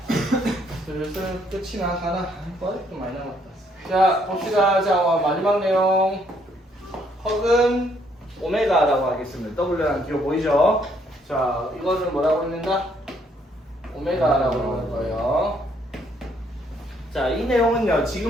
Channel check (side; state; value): both; normal; correlation 0.69